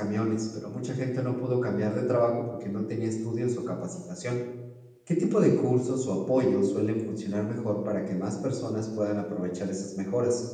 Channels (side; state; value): both; identical; correlation 1.00